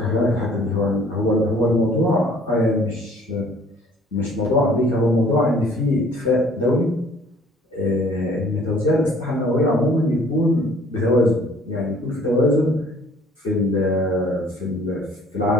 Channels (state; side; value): normal; both; correlation 0.56